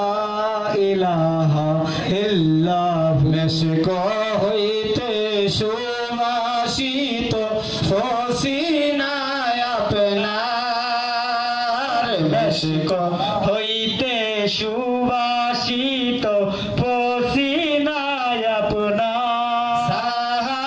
ইলাহা ইল্লাহু মেশক হইতে সুবাসিত ফসিনায় আপনার মেশক হইতে সুবাসিত ফসিনায় আপনার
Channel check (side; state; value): both; identical; correlation 1.00